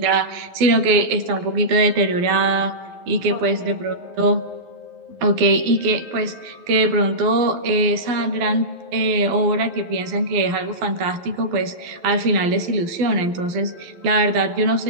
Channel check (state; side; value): late; left; 12 ms